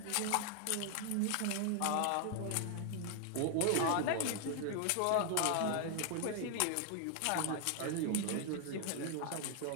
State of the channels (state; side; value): different; both; correlation 0.00